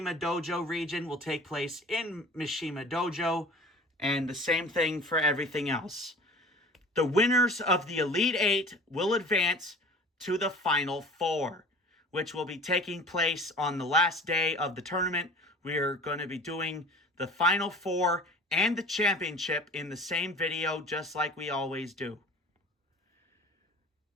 Dojo region will take place in Mishima Dojo, and the same thing for everything else. The winners of the Elite 8 will advance to the Final 4, which will be taking place on the last day of the tournament. We're going to be doing the Final 4 and the championship in the same video, just like we always do.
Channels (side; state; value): both; normal; correlation 0.43